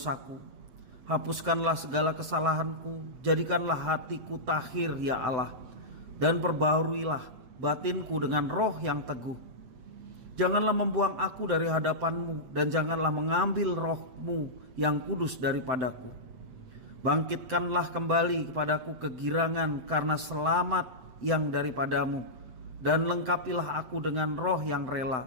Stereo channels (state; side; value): late; left; 7.8 ms